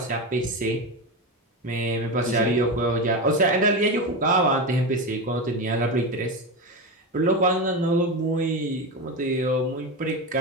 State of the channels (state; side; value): normal; both; correlation 0.18